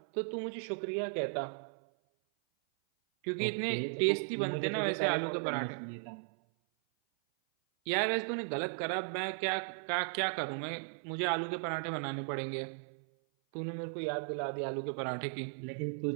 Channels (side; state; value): left; silent; 54 dB below the other